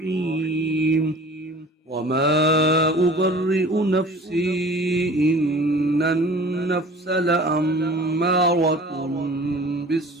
وما أبرئ نفسي إن النفس لأمارة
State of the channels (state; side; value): normal; both; correlation 0.45